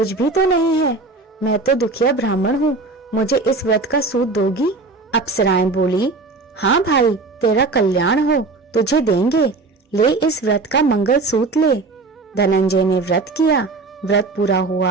भी तो नहीं है। मैं तो दुखिया ब्राह्मण हूँ, मुझे इस व्रत का सूत दोगी? अप्सराएं बोली, हाँ भाई, तेरा कल्याण हो, तुझे देंगे, ले इस व्रत का मंगल सूत्र ले। धनंजय ने व्रत किया। व्रत पूरा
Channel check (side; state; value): left; quieter; 3.7 dB